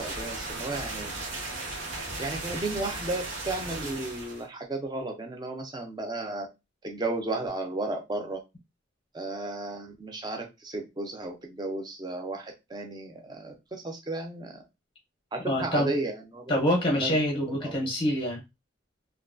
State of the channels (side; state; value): both; normal; correlation 0.41